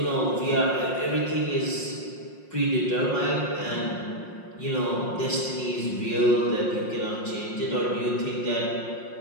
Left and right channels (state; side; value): late; right; 5.6 ms